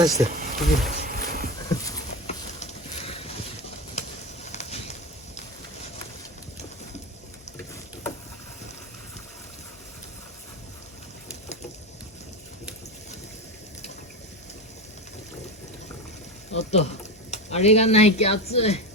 して。おっと、あれがないけ熱い。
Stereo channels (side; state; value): both; normal; correlation 0.21